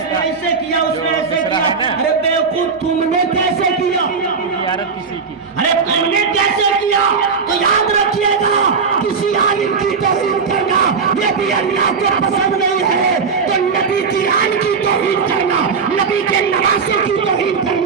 نے ایسے کیا، اس نے ایسے کیا۔ ارے بیوقوف تم نے کیسے کیا؟ ارے تم نے کیسے کیا؟ تو یاد رکھیے گا کسی عالم کی توہین کرنا یہ بھی اللہ کو پسند نہیں ہے، تو نبی کی آن کی توہین کرنا، نبی کے نواسے کی توہین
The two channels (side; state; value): left; quieter; 5.4 dB